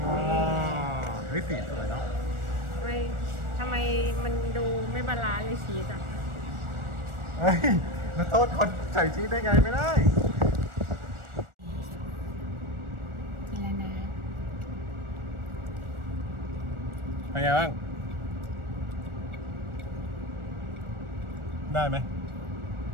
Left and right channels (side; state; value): left; late; 1.4 ms